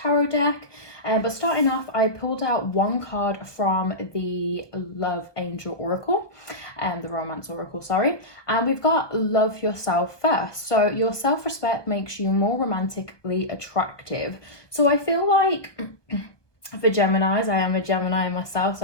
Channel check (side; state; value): right; late; 1.2 ms